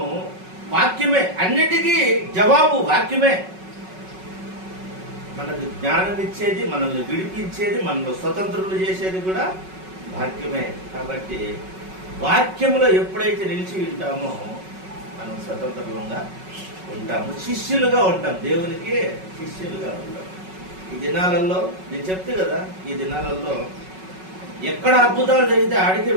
వాక్యమే, అన్నిటికీ జవాబు వాక్యమే. మనకు జ్ఞానం ఇచ్చేది, మనల్ని విడిపించేది, మనల్ని స్వతంత్రులు చేసేది కూడా వాక్యమే. కాబట్టి వాక్యములో ఎప్పుడైతే నిలిచి ఉంటామో మనం స్వతంత్రంగా ఉంటాము, శిష్యులుగా ఉంటాం, దేవునికి శిష్యులుగా ఉంటాం. ఈ దినాలలో నేను చెప్తే కదా, ఈ దినాలలో ఎక్కడ అద్భుతాలు జరిగితే ఆడికే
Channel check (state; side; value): late; left; 5.4 ms